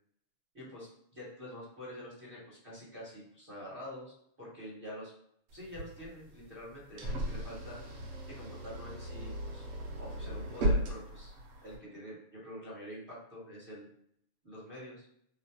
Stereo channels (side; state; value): left; late; 7.1 ms